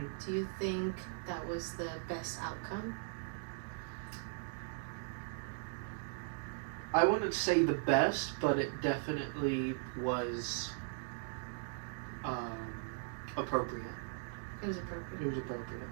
Do you think that was the best outcome? I wouldn't say the best, but it definitely was appropriate. It was appropriate. It was appropriate.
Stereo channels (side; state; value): left; silent; digital silence